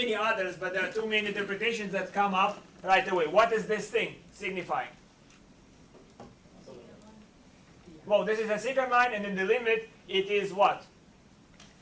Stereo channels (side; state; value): both; identical; correlation 1.00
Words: others, but there are two main interpretations that come up right away. What is this thing signifying? Well, this is a secant line, and in the limit, it is what?